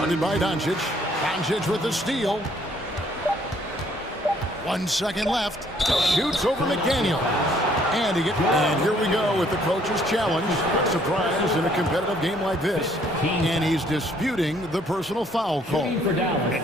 by Doncic. Doncic with the steal. 1 second left. Shoots over McDaniel. And here we go with the coach's challenge. Not surprised in a competitive game like this. And he's disputing the personal foul call.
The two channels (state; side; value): normal; both; correlation 0.64